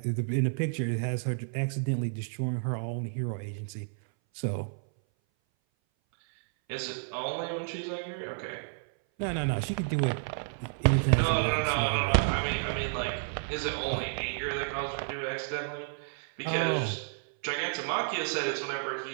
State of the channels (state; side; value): silent; left; 57 dB below the other